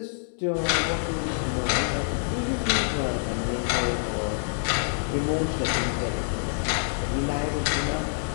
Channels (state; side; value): silent; right; digital silence